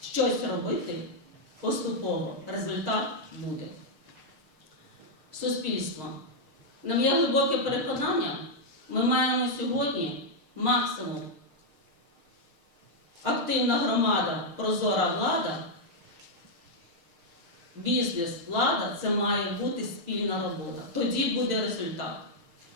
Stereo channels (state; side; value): late; left; 6.5 ms